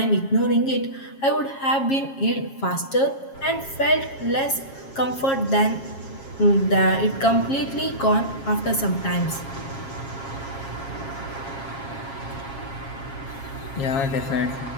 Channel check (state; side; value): late; right; 7.4 ms